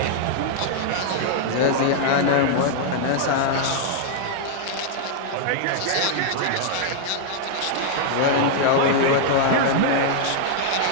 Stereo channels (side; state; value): both; different; correlation -0.01